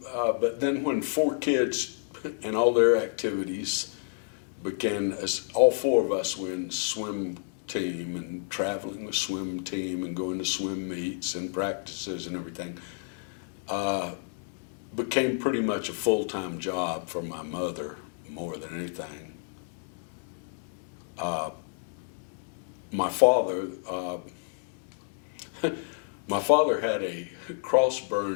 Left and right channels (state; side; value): silent; right; digital silence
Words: but then when 4 kids and all their activities began, as all 4 of us were in swim team and traveling with swim team and going to swim meets and practices and everything, became pretty much a full-time job for my mother more than anything. My father had a cross